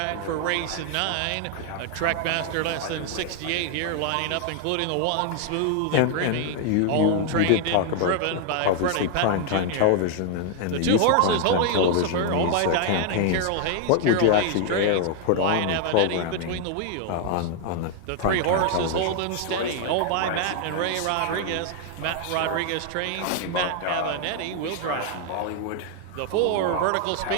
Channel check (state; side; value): different; both; correlation 0.00